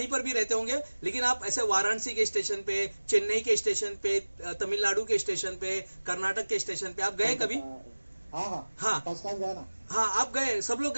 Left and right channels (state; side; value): inverted; both; correlation -1.00